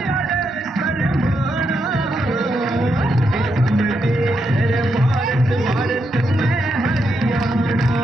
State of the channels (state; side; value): normal; both; correlation 0.81